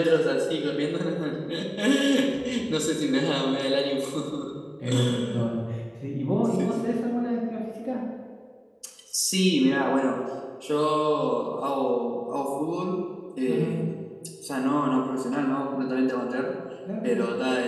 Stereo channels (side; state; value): both; identical; correlation 1.00